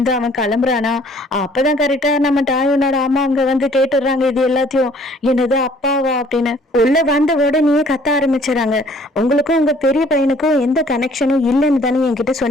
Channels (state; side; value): normal; both; correlation 0.57